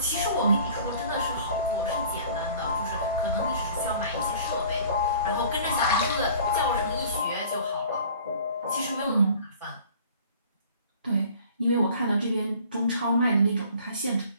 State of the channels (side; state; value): both; inverted; correlation -0.50